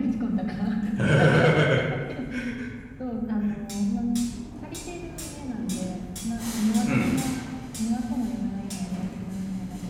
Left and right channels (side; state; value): both; identical; correlation 1.00